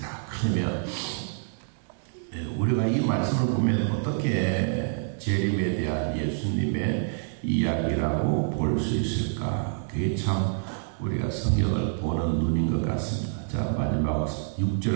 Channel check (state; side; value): silent; left; digital silence